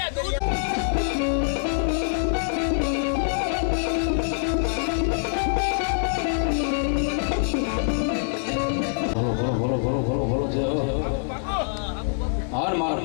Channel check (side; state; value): right; silent; 62 dB below the other